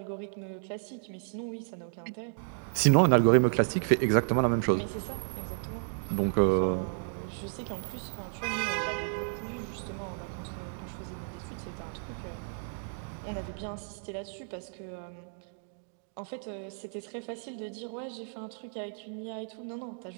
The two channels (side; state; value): left; silent; digital silence